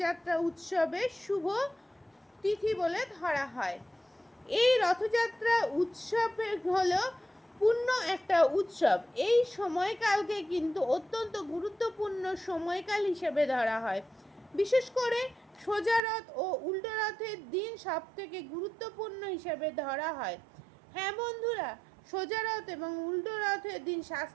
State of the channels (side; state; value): left; drops out; at 16.0 s